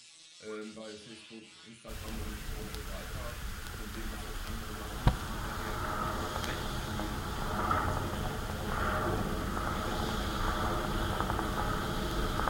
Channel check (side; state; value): both; identical; correlation 1.00